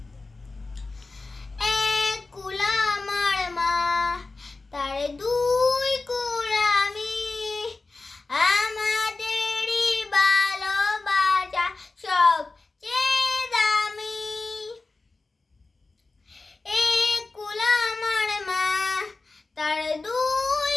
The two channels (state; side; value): quieter; right; 3.6 dB